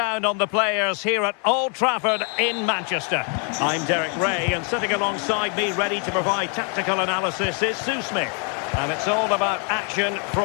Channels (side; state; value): right; quieter; 38.9 dB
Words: on the players here at Old Trafford in Manchester. I'm Derek Ray, and sitting alongside me ready to provide tactical analysis is Sue Smith. And it's all about action